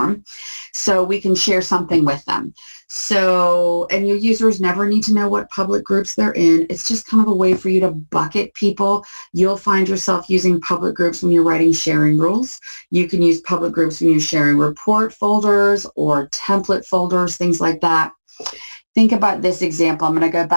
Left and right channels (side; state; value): both; inverted; correlation -1.00